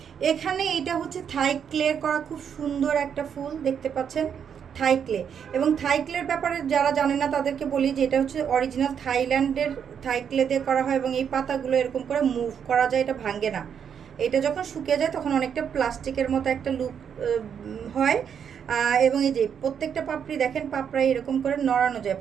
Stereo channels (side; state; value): left; quieter; 7.8 dB